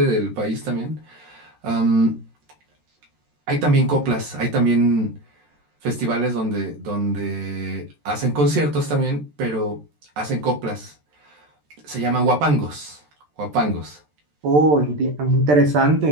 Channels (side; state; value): left; late; 13 ms